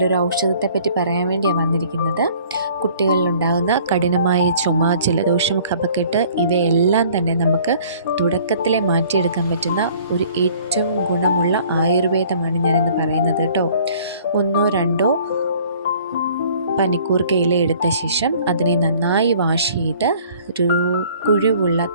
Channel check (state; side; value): inverted; both; correlation -0.54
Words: ഔഷധത്തെപ്പറ്റി പറയാൻ വേണ്ടിയാണ് വന്നിരിക്കുന്നത്. കുട്ടികളിലുണ്ടാകുന്ന കഠിനമായ ചുമ, ജലദോഷം, കഫക്കെട്ട് ഇവയെല്ലാം തന്നെ നമുക്ക് തുടക്കത്തിലെ മാറ്റിയെടുക്കാൻ പറ്റുന്ന ഒരു ഏറ്റവും ഗുണമുള്ള ആയുർവേദമാണ് ഞാനിന്ന് പറയുന്നത് കേട്ടോ. 1-2 പനിക്കൂർക്ക ഇല എടുത്ത ശേഷം അതിനെ നന്നായി വാഷ് ചെയ്ത് ഒരു കുഴിവുള്ള